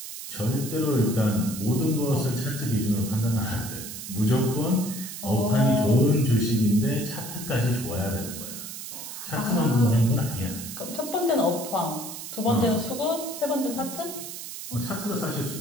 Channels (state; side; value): noise; right; hiss, 9 dB below the sound